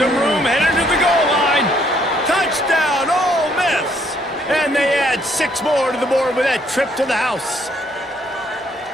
room, headed to the goal line. Touchdown, Ole Miss. And they add 6 more to the board with that trip to the house.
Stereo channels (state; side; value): normal; both; correlation 0.68